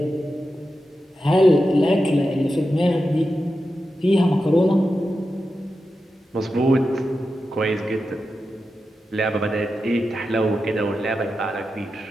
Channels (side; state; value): both; normal; correlation 0.90